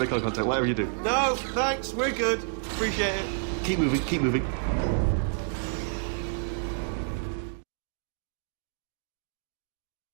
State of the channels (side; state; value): left; silent; digital silence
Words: eye contact, whatever you do. No, thanks, we're good. Appreciate it. Keep moving, keep moving.